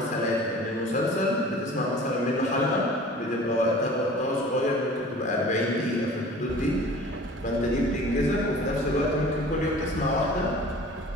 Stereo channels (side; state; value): both; normal; correlation 0.44